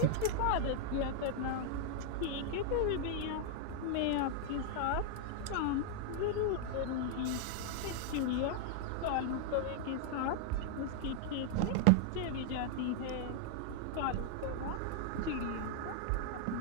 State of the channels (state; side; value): different; both; correlation -0.01